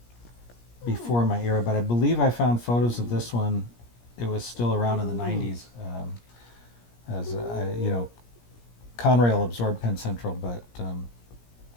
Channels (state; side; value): late; right; 17 ms